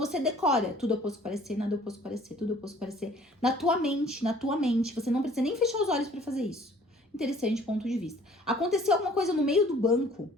decora: tudo é oposto que parecer, nada é oposto que parecer, tudo é oposto que parecer. Na tua mente. Você não precisa nem fechar os olhos pra fazer isso. Interessante ponto de vista. Aconteceu alguma coisa no meio do banco.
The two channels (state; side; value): normal; both; correlation 0.54